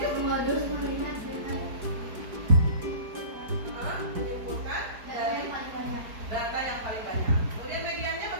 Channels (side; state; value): left; late; 4.8 ms